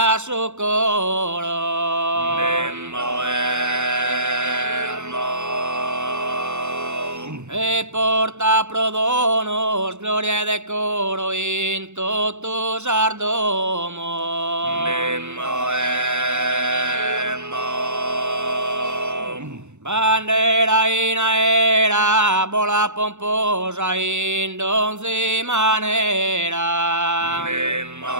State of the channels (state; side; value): late; left; 0.83 ms